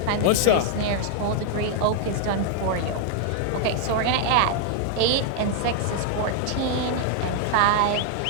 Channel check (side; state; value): both; different; correlation 0.00